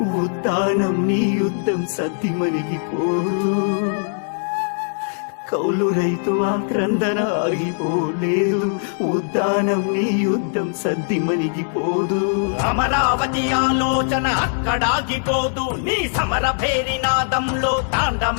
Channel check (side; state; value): right; silent; digital silence